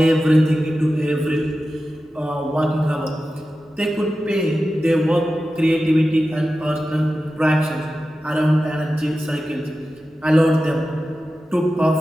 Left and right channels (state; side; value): normal; both; correlation 0.93